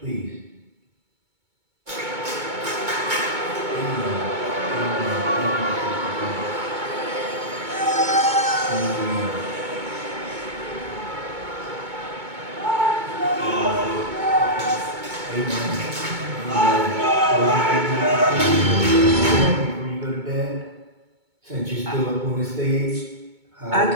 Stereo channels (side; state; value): left; late; 2.2 ms